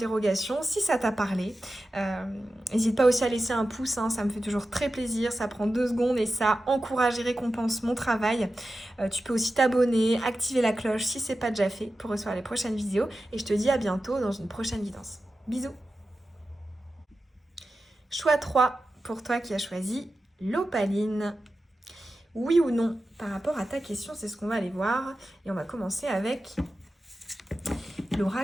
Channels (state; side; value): normal; both; correlation 0.92